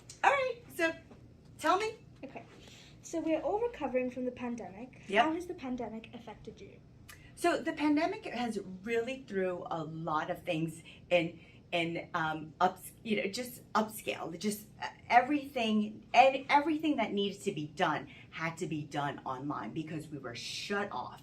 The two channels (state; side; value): identical; both; correlation 1.00